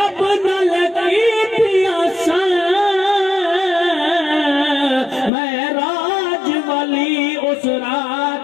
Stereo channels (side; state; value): right; drops out; at 5.3 s